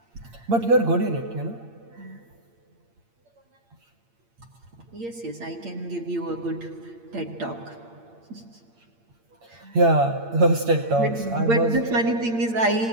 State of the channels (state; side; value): late; left; 8.7 ms